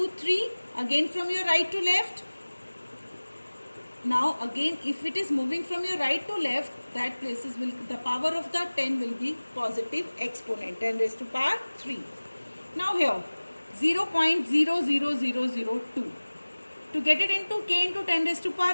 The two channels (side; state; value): both; inverted; correlation -1.00